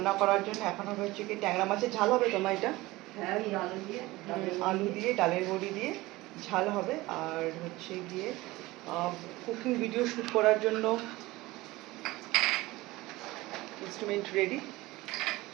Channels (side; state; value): left; quieter; 19.7 dB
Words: করার জন্য। এখন হবে হচ্ছে কি ট্যাংরা মাছের ঝাল হবে। তোমার এটা আলু দিয়ে ডালের বড়ি দিয়ে ঝাল হবে। আর হচ্ছে গিয়ে কুকিং ভিডিও শ্যুট করার জন্য ইনস্ট্রুমেন্ট রেডি।